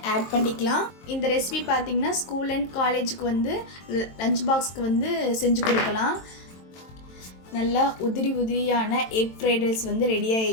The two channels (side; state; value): right; late; 23 ms